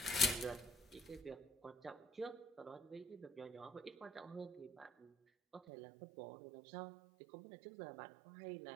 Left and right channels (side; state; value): left; drops out; at 5.6 s